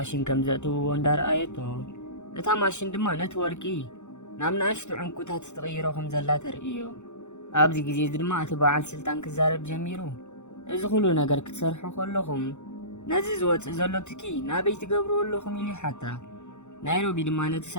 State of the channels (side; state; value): right; late; 0.83 ms